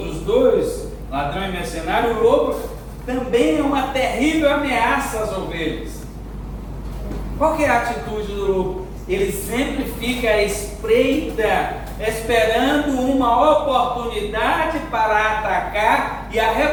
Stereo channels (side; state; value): both; identical; correlation 1.00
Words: dois, ladrão e mercenário, o lobo também é uma terrível ameaça às ovelhas. Qual que é a atitude do lobo? Ele sempre fica à espreita, esperando uma oportunidade para atacar e